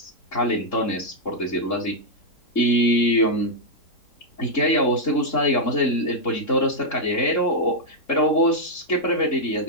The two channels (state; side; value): late; right; 3.7 ms